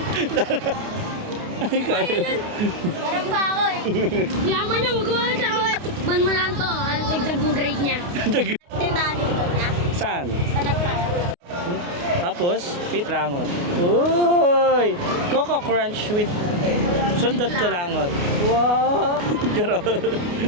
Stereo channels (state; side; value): late; left; 29 ms